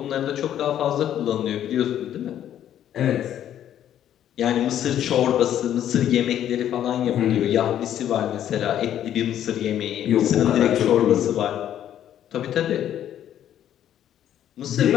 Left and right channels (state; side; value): quieter; right; 10.8 dB